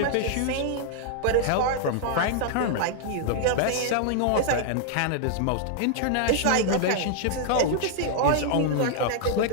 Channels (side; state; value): both; different; correlation 0.00